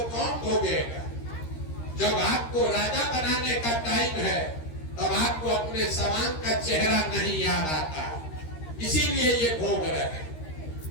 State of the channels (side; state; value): right; late; 13 ms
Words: कौन भोगेगा? जब आपको राजा बनाने का टाइम है तब आपको अपने समान का चेहरा नहीं याद आता, इसीलिए ये भोग रहे हैं।